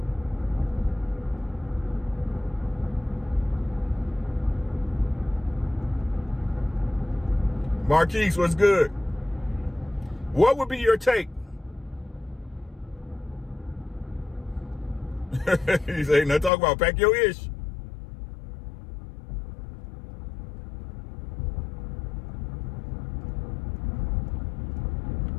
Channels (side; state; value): right; drops out; at 16.5 s